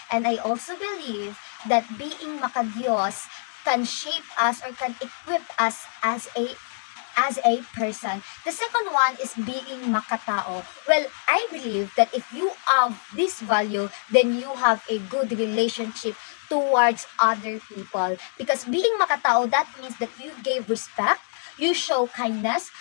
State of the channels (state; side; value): silent; right; 62 dB below the other